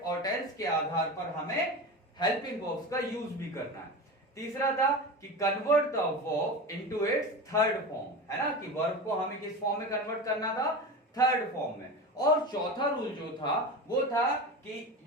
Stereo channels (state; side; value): normal; both; correlation 0.26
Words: और टेंस के आधार पर हमें हेल्पिंग वर्ब्स का यूज भी करना है। तीसरा था कि convert the verb into its third form, है ना, कि वर्ब को हमें किस फॉर्म में कन्वर्ट करना था? थर्ड फॉर्म में। और चौथा रूल जो था वो था कि